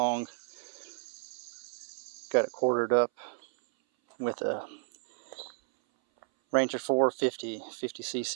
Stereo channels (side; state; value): left; silent; 56 dB below the other